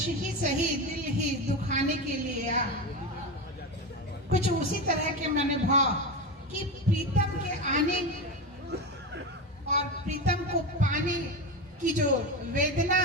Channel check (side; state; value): both; normal; correlation 0.19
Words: ही सही दिल ही दुखाने के लिए आ। कुछ उसी तरह के मैंने भाव कि प्रीतम के आने और प्रीतम को पाने की जो वेदना